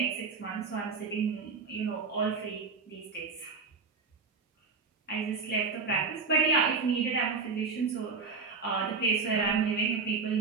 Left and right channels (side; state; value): left; quieter; 4.8 dB